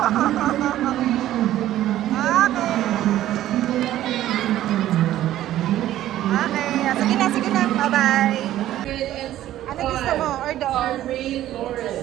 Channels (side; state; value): left; quieter; 13.3 dB